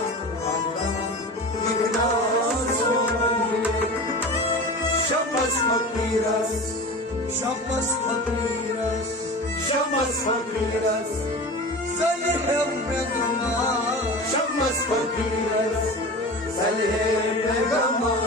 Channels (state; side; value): normal; both; correlation 0.32